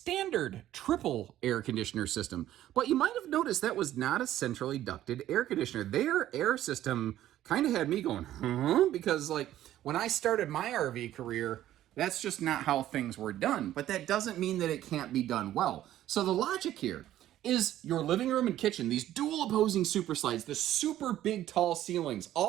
triple air conditioner system. But you might have noticed that was not a centrally ducted air conditioner. Their air system kind of had me going, huh? Because like when I started my RV career, that's just not how things were done. But that doesn't mean that it can't be done well. So the logic here is your living room and kitchen, these dual opposing super slides, the super big tall ceilings,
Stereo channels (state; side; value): quieter; left; 13.0 dB